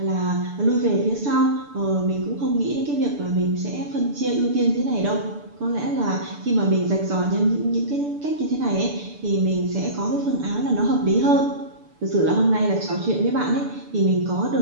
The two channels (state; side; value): late; left; 6.9 ms